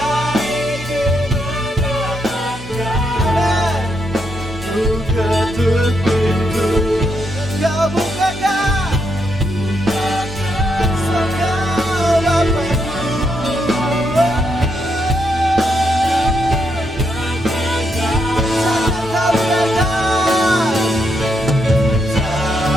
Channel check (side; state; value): both; normal; correlation 0.79